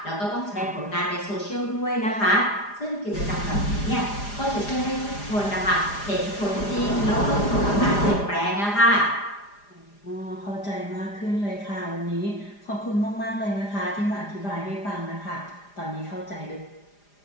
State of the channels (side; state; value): right; late; 4.9 ms